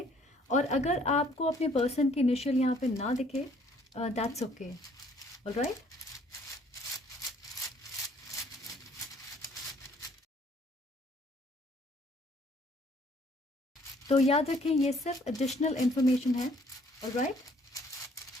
और अगर आपको अपने पर्सन की इनिशियल यहाँ पे ना दिखे, दैट्स ओके। ऑलराइट, तो याद रखें ये सिर्फ एडिशनल इंफॉर्मेशन है। ऑलराइट,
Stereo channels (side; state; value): both; normal; correlation 0.61